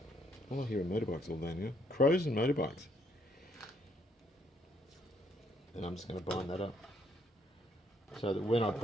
All I hear are motorbikes all day now. Crows and motorbikes. And I'm just going to bind that up, so that when I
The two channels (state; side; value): normal; both; correlation 0.70